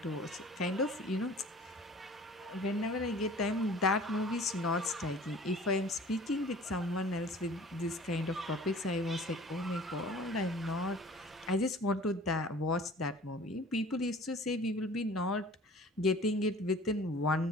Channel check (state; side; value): normal; both; correlation 0.46